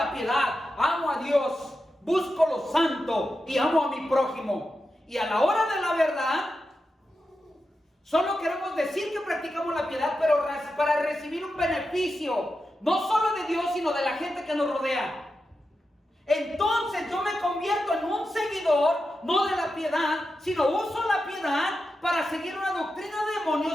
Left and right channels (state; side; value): normal; both; correlation 0.89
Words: piedad, amo a Dios, busco lo santo y amo a mi prójimo. Y a la hora de la verdad, solo queremos decir que practicamos la piedad, pero para recibir un beneficio, no solo de Dios, sino de la gente que nos rodea. Entonces yo me convierto en un seguidor, no de la piedad, sino uso la piedad para seguir una doctrina de